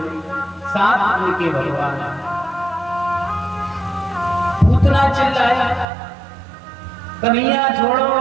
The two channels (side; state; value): left; drops out; at 5.9 s